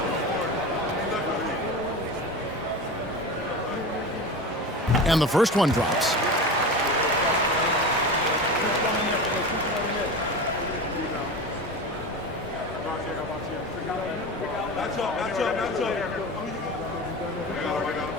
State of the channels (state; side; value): normal; both; correlation 0.28